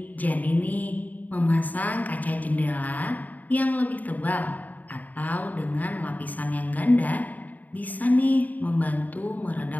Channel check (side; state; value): right; late; 0.079 ms